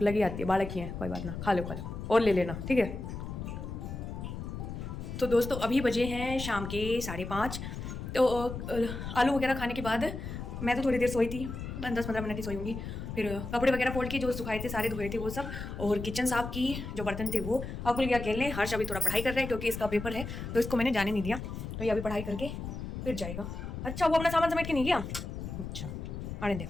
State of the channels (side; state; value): left; noise; rumble, 7 dB below the sound